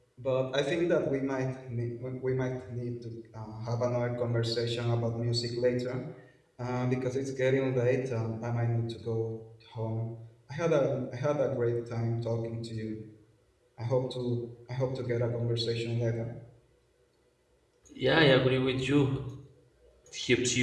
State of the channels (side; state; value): both; identical; correlation 1.00